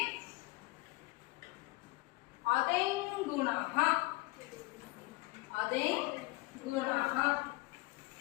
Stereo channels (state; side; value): quieter; right; 22.0 dB